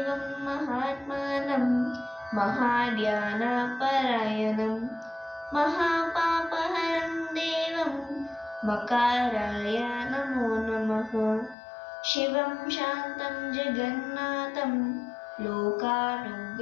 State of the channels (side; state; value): right; drops out; at 11.6 s